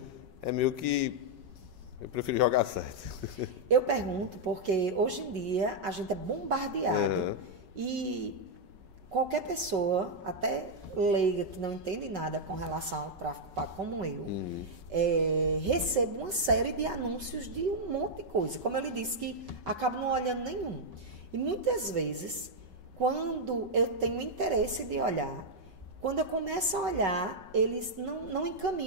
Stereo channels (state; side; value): late; left; 5.3 ms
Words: é meio que eu prefiro jogar certo. Eu pergunto porque hoje em dia a gente é bombardeado e qualquer pessoa, até leiga que não entende nada com relação ao tráfico pago como eu, recebo uma série de anúncios de um monte de coisa. Como eu lhe disse, que acabo não olhando nenhum. E muitas vezes, quando eu tenho interesse de olhar, quando eu começo a olhar, eles não